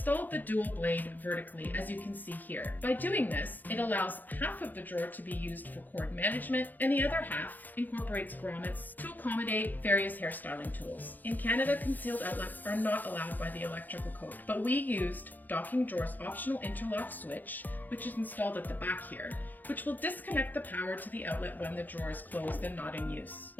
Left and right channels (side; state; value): right; late; 0.085 ms